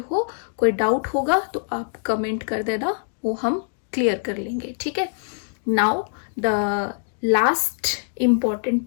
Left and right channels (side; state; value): right; silent; digital silence